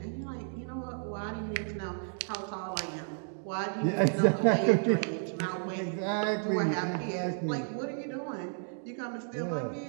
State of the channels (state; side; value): silent; left; 56 dB below the other